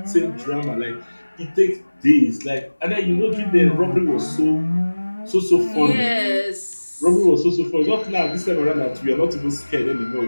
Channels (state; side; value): inverted; both; correlation -1.00